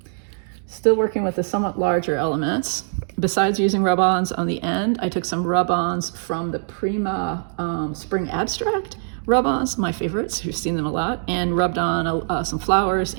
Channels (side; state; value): left; silent; digital silence